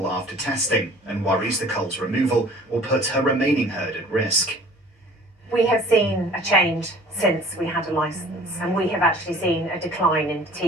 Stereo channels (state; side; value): normal; both; correlation 0.49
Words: after testing and worries the cull's removal will put her remaining herd at risk. We have seen a change since we had a licence, and we have actually seen a decline in